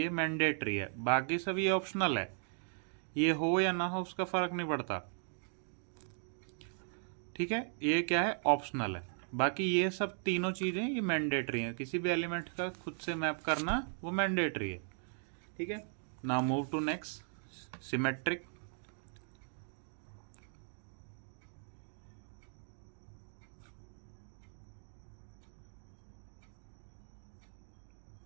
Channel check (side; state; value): left; silent; 53 dB below the other